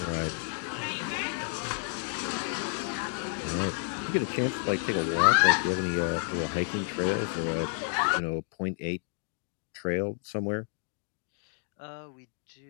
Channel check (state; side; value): silent; right; 57 dB below the other